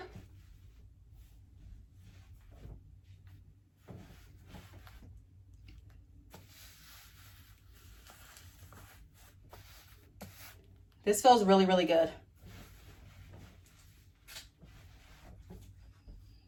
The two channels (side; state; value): both; identical; correlation 1.00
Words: This feels really, really good.